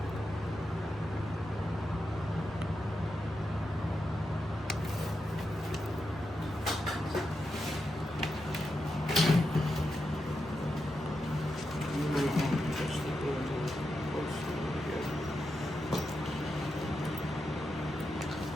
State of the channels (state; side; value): normal; both; correlation 0.87